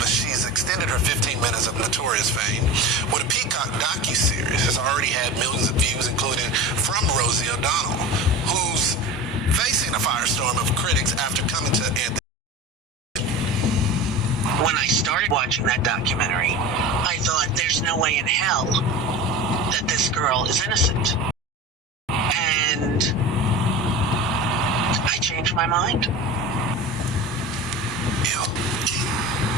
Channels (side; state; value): both; normal; correlation 0.31